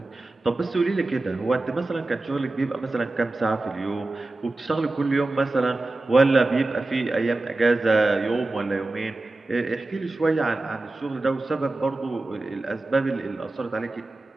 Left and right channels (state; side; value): quieter; left; 3.0 dB